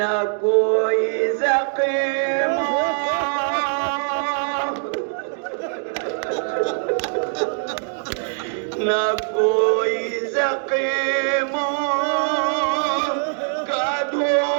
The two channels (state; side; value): silent; left; 64 dB below the other